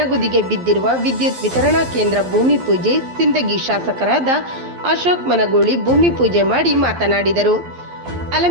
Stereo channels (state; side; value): late; left; 12 ms